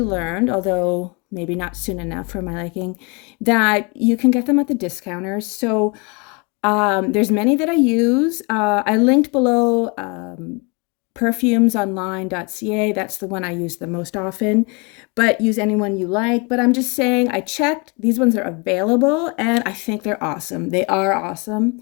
although maybe not soon enough for my liking, that you can get them at the discounters. So there's many that I use. I linked below perfumesonline.ca. That's the one I use the most often, but use any one you like. But I'm just saying, I checked. These ones are available and I think they're awesome. They are awesome.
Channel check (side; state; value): right; quieter; 30.9 dB